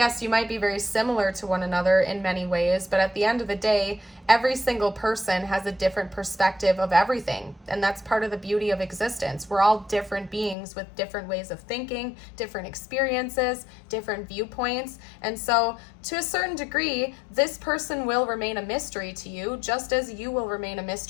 you might be very similar to one another in many ways, but at the end of the day, every single person has a different perspective of everything. And that's part of the beauty of existence. We're all different beings with different ways of thinking, different experiences, different viewpoints. And so to a certain degree, this person will remain a mystery to you, just as you will remain a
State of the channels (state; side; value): drops out; right; at 10.6 s